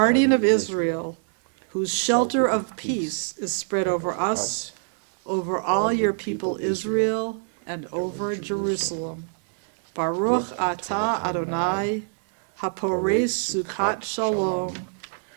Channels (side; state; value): left; silent; digital silence